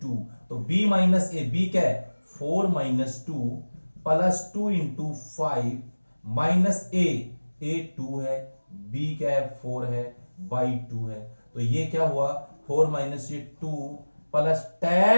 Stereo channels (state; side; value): inverted; both; correlation -1.00